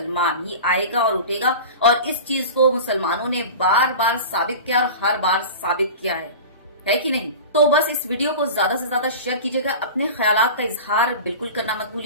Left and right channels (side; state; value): both; inverted; correlation -0.33